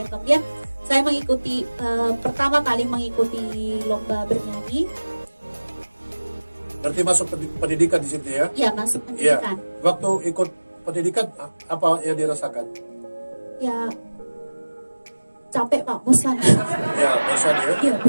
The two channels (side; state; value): both; inverted; correlation -1.00